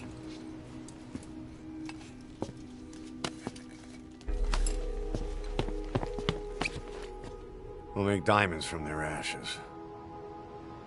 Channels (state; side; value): identical; both; correlation 1.00